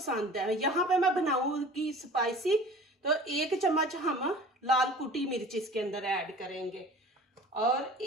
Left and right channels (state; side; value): normal; both; correlation 0.43